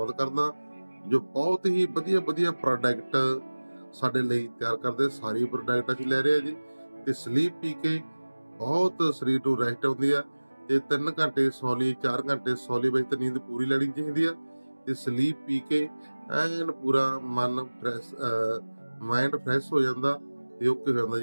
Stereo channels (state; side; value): inverted; both; correlation -1.00